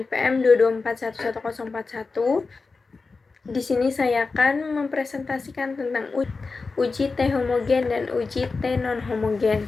224111041. Di sini saya akan mempresentasikan tentang uji T homogen dan uji T non homogen.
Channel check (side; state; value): right; quieter; 4.2 dB